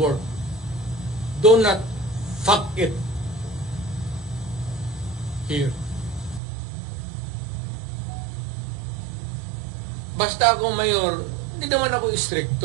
Do not fuck it here. Basta ako mayor, hindi naman ako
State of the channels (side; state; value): left; drops out; at 6.4 s